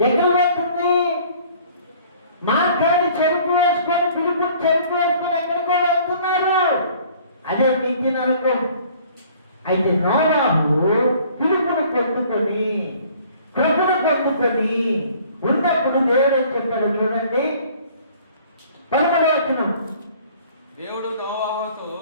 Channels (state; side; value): inverted; both; correlation -0.54